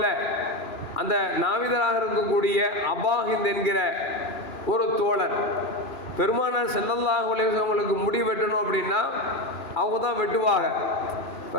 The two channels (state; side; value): late; right; 2.9 ms